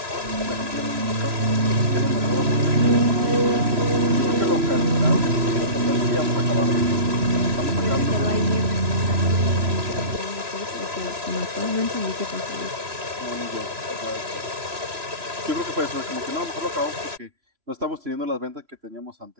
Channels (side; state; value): left; late; 3.0 ms